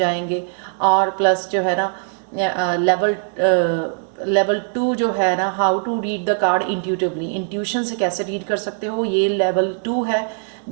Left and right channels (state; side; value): silent; left; 65 dB below the other